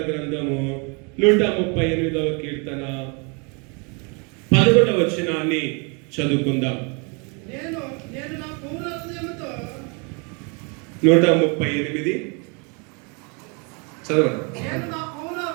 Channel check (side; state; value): left; quieter; 33.3 dB